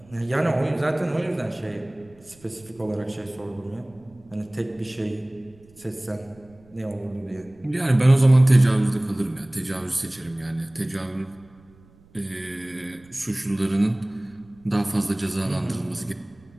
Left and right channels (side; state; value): right; noise; rumble, 27 dB below the sound